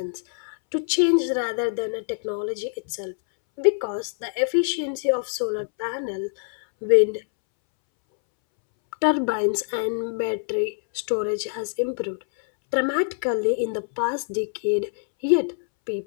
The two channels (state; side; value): silent; right; 62 dB below the other